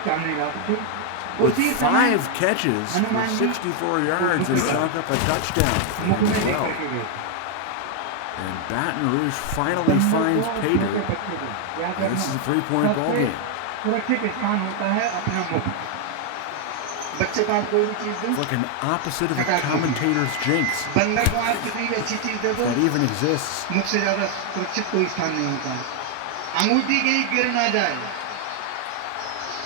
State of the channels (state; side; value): different; both; correlation 0.00